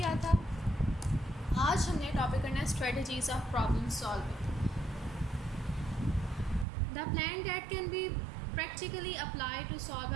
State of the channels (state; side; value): drops out; left; at 6.7 s